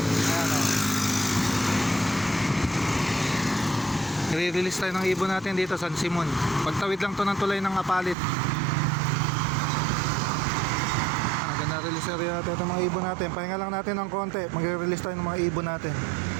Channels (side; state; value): left; drops out; at 8.2 s